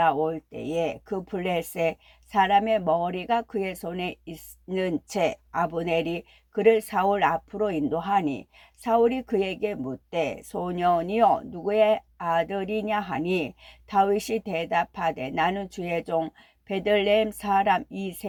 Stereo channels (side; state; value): both; identical; correlation 1.00